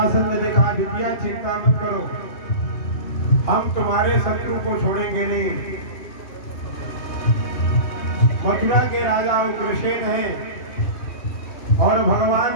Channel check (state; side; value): late; right; 2.8 ms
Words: ने कहा, बिटिया चिंता मत करो, हम तुम्हारे शत्रु को छोड़ेंगे नहीं। मथुरा के राजा उग्रसेन हैं और